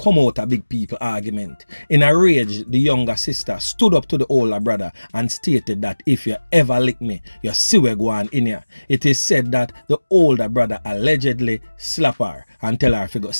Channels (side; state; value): both; inverted; correlation -1.00